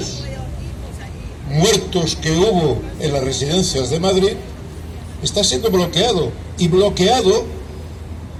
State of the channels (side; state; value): both; identical; correlation 1.00